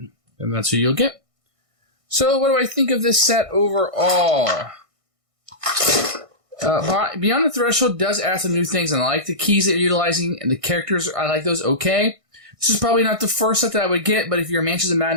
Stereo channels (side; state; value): left; late; 1.6 ms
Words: And that's who you'll get. So, what do I think of this set overall? Beyond the Threshold does add some new things, and I like the keys that you're utilizing, and the characters, I like those okay. This is probably not the first set that I would get, but if you're a Mansions of